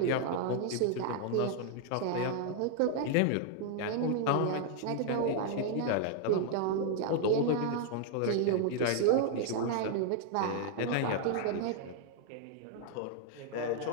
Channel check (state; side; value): different; both; correlation 0.00